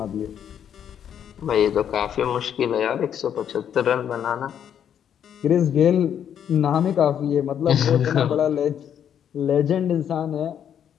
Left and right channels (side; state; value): right; quieter; 9.1 dB